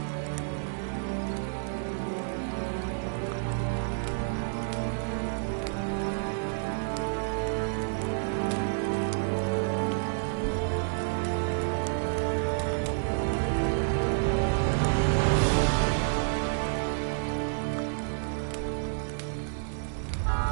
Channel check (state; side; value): silent; left; 58 dB below the other